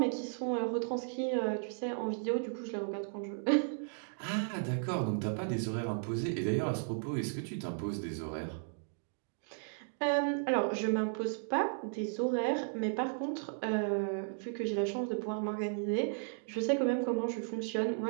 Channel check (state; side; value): silent; left; digital silence